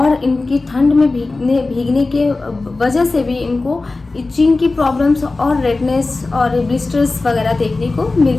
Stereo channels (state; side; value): quieter; right; 3.4 dB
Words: इनकी ठंड में भीगने के वजह से भी इनको इचिंग की प्रॉब्लम्स और रेडनेस और ब्लिस्टर्स वगैरह देखने को